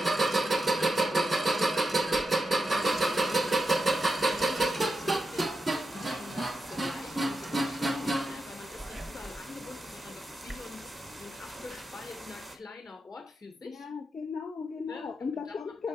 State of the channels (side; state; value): both; normal; correlation 0.87